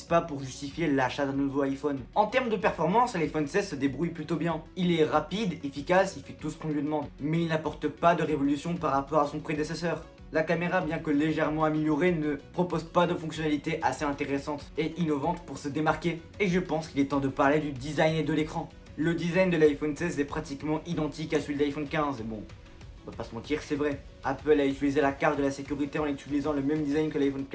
pas pour justifier l'achat d'un nouveau iPhone. En termes de performance, l'iPhone 16 se débrouille plutôt bien. Il est rapide, efficace, il fait tout ce qu'on lui demande, mais il n'apporte pas de révolution par rapport à son prédécesseur. La caméra, bien que légèrement améliorée, ne propose pas de fonctionnalités assez intéressantes et innovantes pour se démarquer. Et je pense qu'il est temps de parler du design et de l'écran. Le design de l'iPhone 16 est pratiquement identique à celui de l'iPhone 15, et bon, on va pas se mentir, c'est vrai. Apple a utilisé la carte de la sécurité en utilisant le même design que l'iPhone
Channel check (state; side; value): identical; both; correlation 1.00